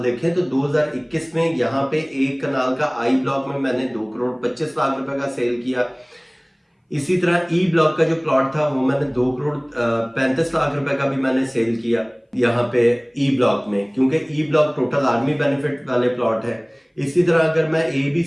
तो 2021 में यहाँ पे एक कनाल का आई ब्लॉक में मैंने 2 करोड़ 25 लाख रुपए का सेल किया। इसी तरह ई ब्लॉक का जो प्लॉट था वो मैंने 2 करोड़ 35 लाख रुपए का भी मैंने सेल किया यहाँ पे ई ब्लॉक में, क्योंकि E block total army benefit वाले प्लॉट है। इसी तरह अगर मैं ए बी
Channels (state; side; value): identical; both; correlation 1.00